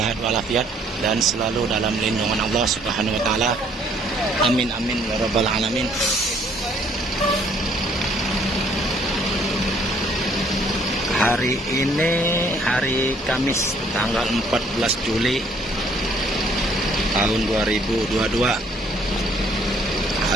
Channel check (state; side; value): normal; both; correlation 0.63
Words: walafiat dan selalu dalam lindungan Allah Subhanahu wa taala. Amin amin ya rabbal alamin. Hari ini hari Kamis tanggal 14 Juli tahun 2022.